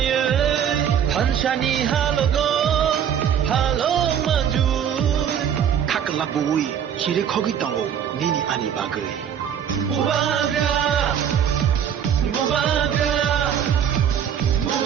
thanchani halogo halok manjoi Kakla bui kire khogi tango nini ani bagai Bubagra Bubagra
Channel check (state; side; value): quieter; left; 8.7 dB